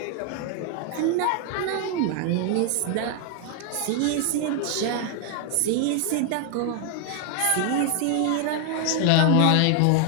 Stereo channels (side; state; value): both; different; correlation 0.00